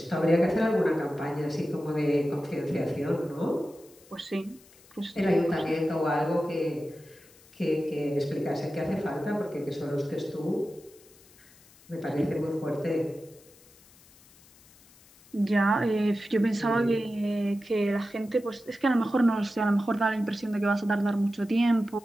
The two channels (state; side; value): noise; left; hiss, 26 dB below the sound